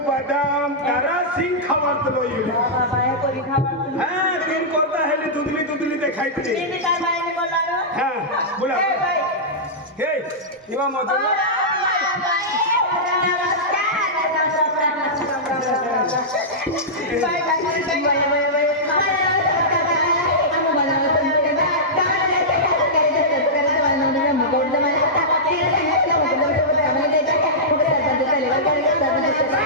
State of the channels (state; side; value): normal; both; correlation -0.13